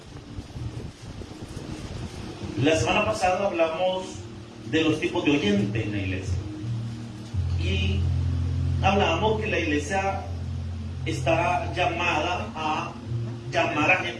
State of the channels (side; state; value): both; identical; correlation 1.00